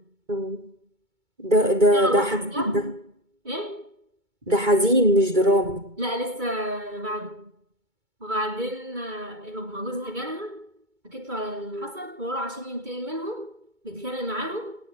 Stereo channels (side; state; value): left; late; 2.2 ms